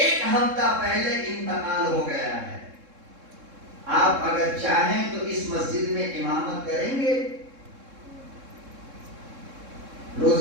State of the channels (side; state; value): left; late; 3.7 ms